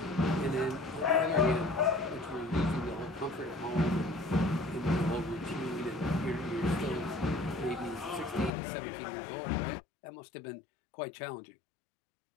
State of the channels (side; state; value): right; drops out; at 8.5 s